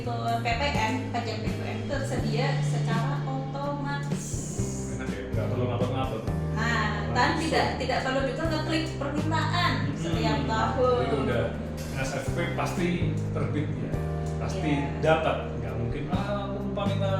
PPN, pajak PPN tersedia secara otomatis. Enak ya, nggak perlu ngapet-ngapet. Nah, dan tidak perlu juga ngeklik permintaan setiap tahun. Itu udah NSFP pasti terbit ya, pasti dapat. Nggak mungkin aku lupa minta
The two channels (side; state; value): both; identical; correlation 1.00